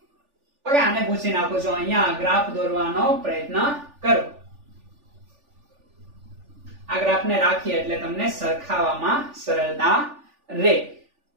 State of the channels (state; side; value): late; left; 3.4 ms